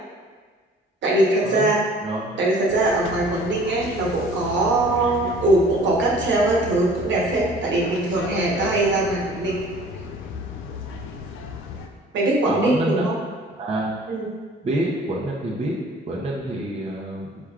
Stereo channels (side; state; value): both; normal; correlation 0.50